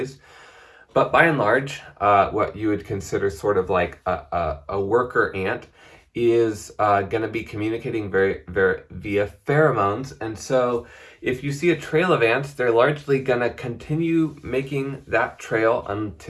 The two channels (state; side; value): identical; both; correlation 1.00